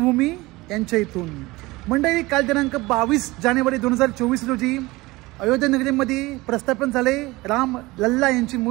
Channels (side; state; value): left; quieter; 21.1 dB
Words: यांच्या इथून. मंडळी, काल दिनांक 22 जानेवारी 2024 रोजी अयोध्या नगरीमध्ये प्रस्थापन झाले राम लल्ला यांची